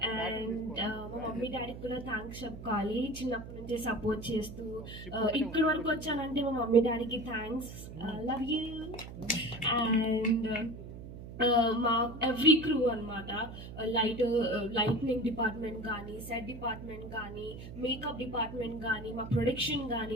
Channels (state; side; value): noise; right; hum, 12 dB below the sound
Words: And మా mummy డాడీకి కూడా thanks చెప్పుకోవాలి, చిన్నప్పటి నుంచి support చేస్తూ ఇక్కడి వరకు వచ్చానంటే మా మమ్మీ డాడీకి థ్యాంక్స్, లవ్ యూ. అండ్ మా ఎవ్రీ క్రూ అనమాట, లైట్నింగ్ డిపార్ట్మెంట్ కానీ, సెట్ డిపార్ట్మెంట్ కానీ, మేకప్ డిపార్ట్మెంట్ కానీ, మా ప్రొడక్షన్